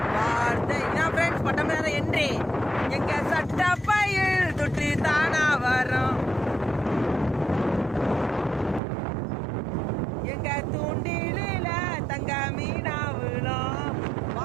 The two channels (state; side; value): drops out; left; at 8.8 s